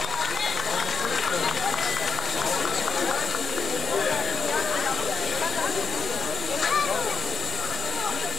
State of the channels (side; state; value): right; quieter; 5.9 dB